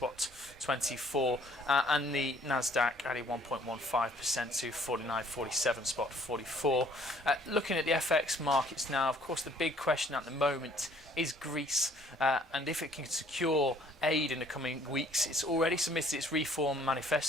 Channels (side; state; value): both; normal; correlation 0.59